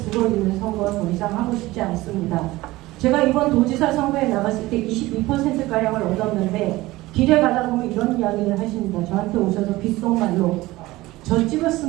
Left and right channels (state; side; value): quieter; left; 18.7 dB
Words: 선거 더 이상 하고 싶지 않습니다. 제가 이번 도지사 선거에 나갔을 때 22%가량을 얻었는데 길에 가다 보면 이런 이야기를 하십니다. 저한테 오셔서 귓속말로 저